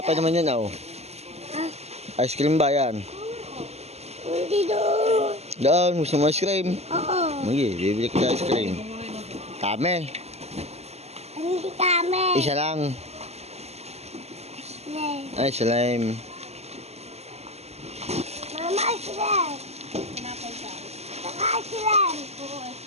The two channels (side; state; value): left; late; 0.30 ms